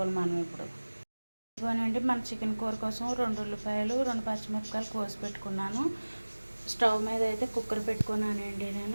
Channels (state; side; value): inverted; both; correlation -1.00